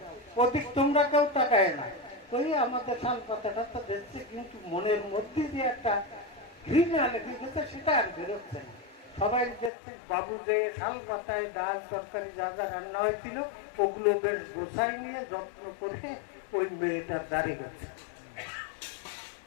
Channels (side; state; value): right; drops out; at 9.7 s